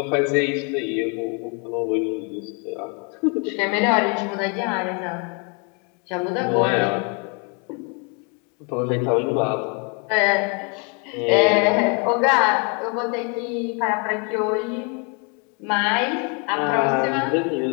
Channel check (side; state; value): right; quieter; 34.5 dB